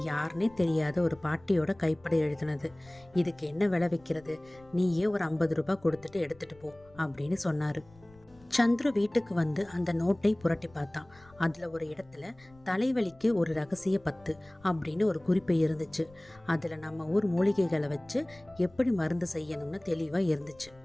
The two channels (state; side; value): noise; left; rumble, 26 dB below the sound